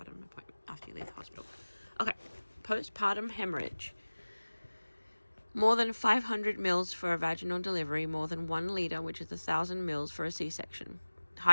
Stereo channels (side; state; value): both; inverted; correlation -1.00